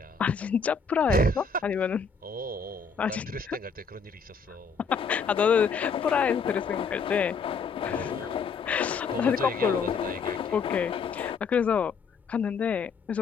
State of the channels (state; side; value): quieter; right; 5.3 dB